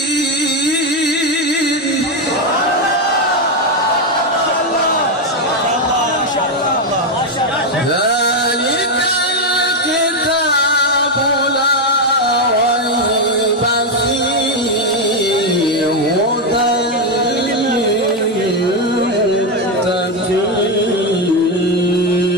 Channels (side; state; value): both; normal; correlation 0.06